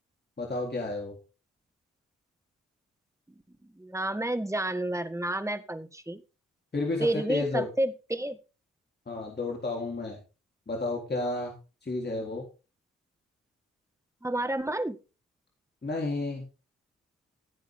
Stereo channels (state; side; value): normal; both; correlation 0.69